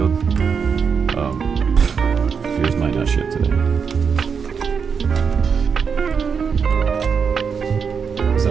yours might not ship today. Because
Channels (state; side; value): quieter; left; 6.2 dB